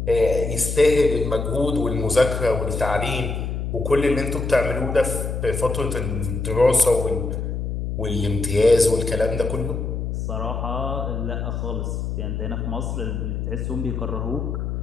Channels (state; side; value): noise; left; hum, 3 dB below the sound